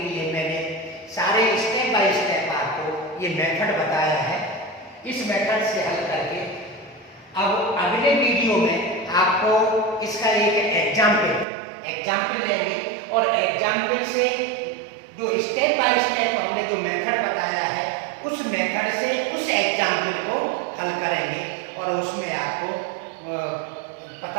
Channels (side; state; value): left; drops out; at 11.5 s